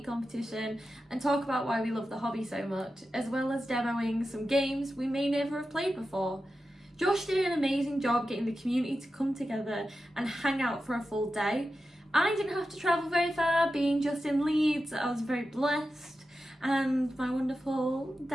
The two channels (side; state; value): both; normal; correlation 0.91